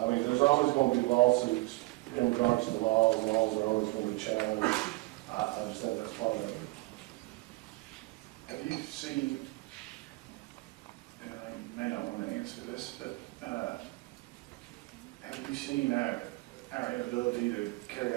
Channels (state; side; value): quieter; left; 22.7 dB